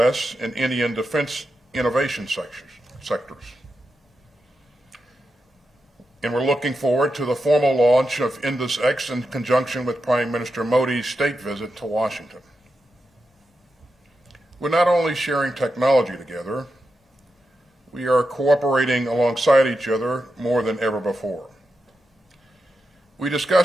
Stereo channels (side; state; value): both; normal; correlation 0.88